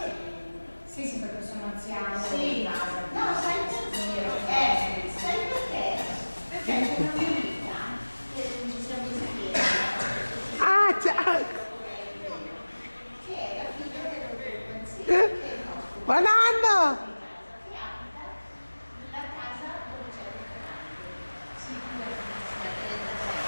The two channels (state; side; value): inverted; both; correlation -1.00